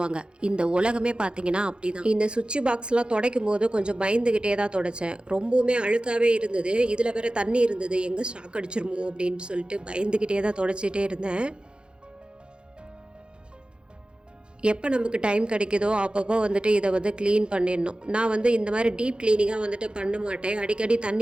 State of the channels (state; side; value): late; left; 0.052 ms